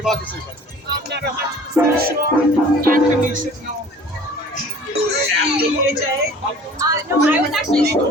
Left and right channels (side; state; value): both; normal; correlation 0.47